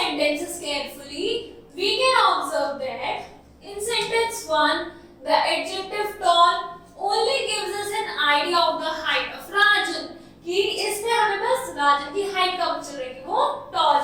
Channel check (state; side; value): identical; both; correlation 1.00